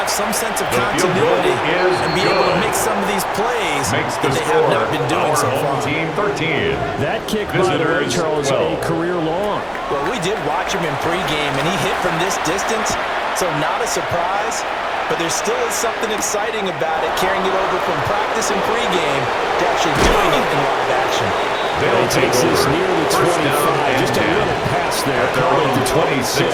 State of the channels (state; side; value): identical; both; correlation 1.00